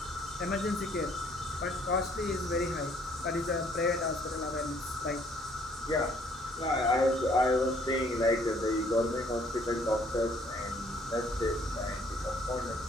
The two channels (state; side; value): normal; both; correlation 0.62